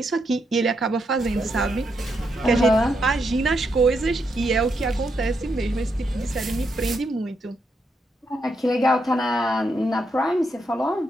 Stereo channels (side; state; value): both; normal; correlation 0.80